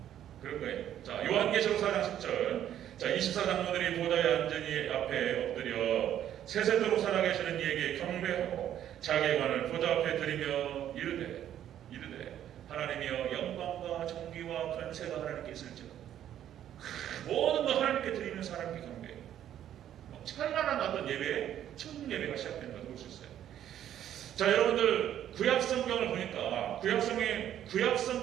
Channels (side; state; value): left; quieter; 10.9 dB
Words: 그런 거예요. 자, 요한계시록 4장 10절. 자, 24장로들이 보좌에 앉으니 앞에 엎드려 세세토록 살아계시는 이에게 경배하고 자기의 관을 보좌 앞에 드리며 이르되 하나님이여 영광과 존귀와 권세가 하나님께 있을지어다. 모든 거 하나님께 드리면서 하나님께 경배해요. 찬란한 어떤 예배, 천국 예배가 시작된다고 볼 수 있어요. 자, 여러분들, 구약 성경을 보니까 구약